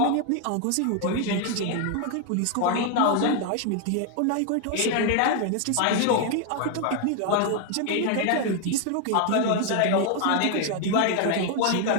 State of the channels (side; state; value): both; different; correlation 0.00